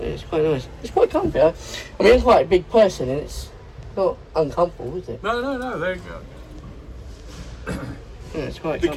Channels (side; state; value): both; identical; correlation 1.00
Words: it's quite nice. It's quite comfy. I mean, I'm quite a big person and it's not uncomfortable, is it? No, there you go. Yeah, it's quite The